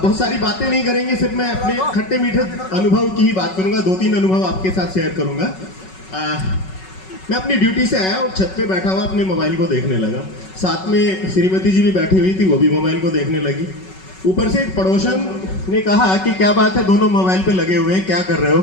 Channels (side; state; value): right; late; 5.3 ms